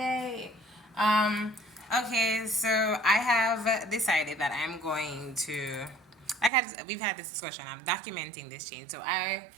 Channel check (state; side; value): drops out; left; at 6.5 s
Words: Um, okay, so I have decided that I'm going to, we've had this discussion. I'm documenting this change, so